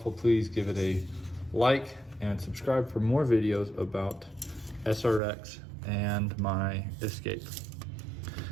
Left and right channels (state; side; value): drops out; left; at 5.2 s